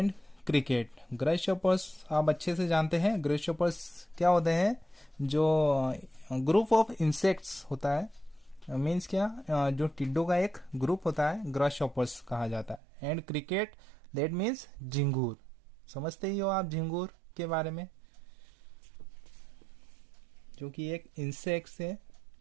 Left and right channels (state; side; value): drops out; left; at 12.8 s